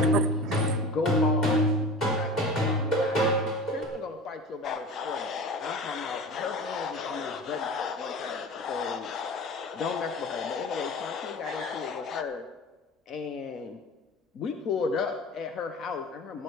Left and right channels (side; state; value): both; normal; correlation 0.34